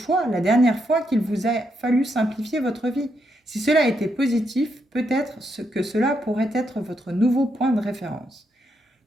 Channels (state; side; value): normal; both; correlation 0.79